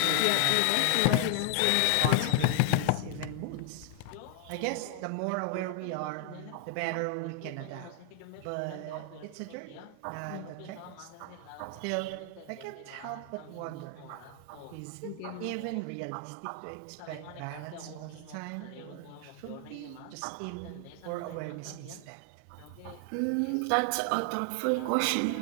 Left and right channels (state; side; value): different; both; correlation 0.00